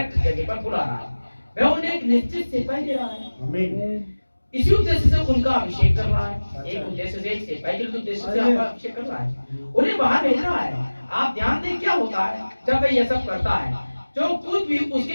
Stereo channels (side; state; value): both; inverted; correlation -1.00